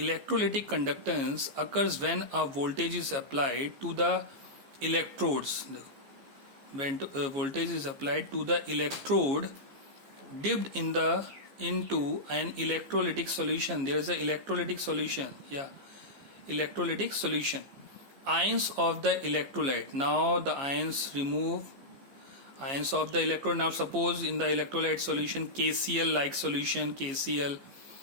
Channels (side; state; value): left; late; 15 ms